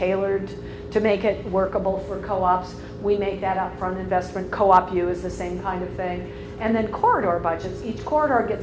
to make it workable for co-ops, we make that upfront investment. Co-op U is the same kind of thing. And then corridor budgets. Each corridor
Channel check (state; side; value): identical; both; correlation 1.00